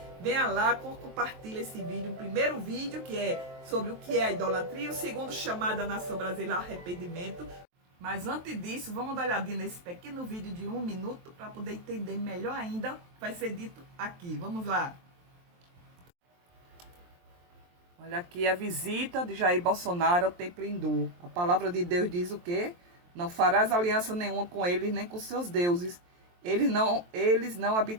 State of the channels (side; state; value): left; late; 23 ms